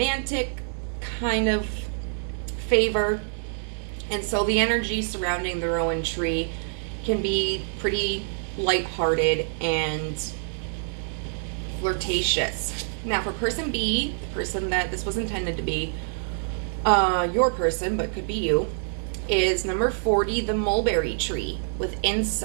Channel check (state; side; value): silent; left; 60 dB below the other